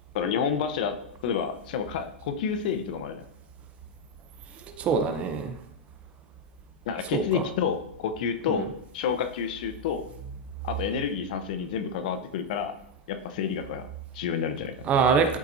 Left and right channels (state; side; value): normal; both; correlation 0.02